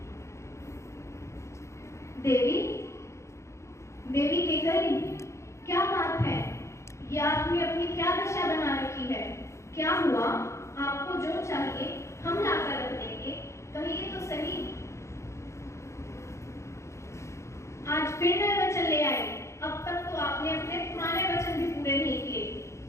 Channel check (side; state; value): right; late; 0.14 ms